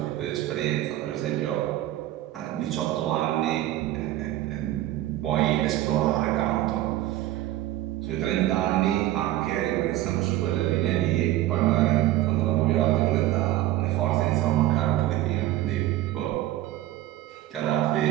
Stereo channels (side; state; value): left; quieter; 14.6 dB